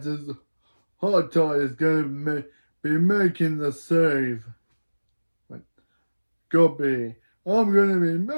says, "High Tide is gonna be making the save." But copy. I'm gonna be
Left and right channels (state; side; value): inverted; both; correlation -1.00